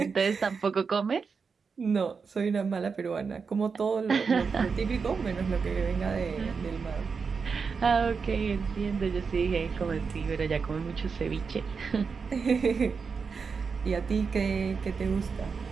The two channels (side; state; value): left; quieter; 5.4 dB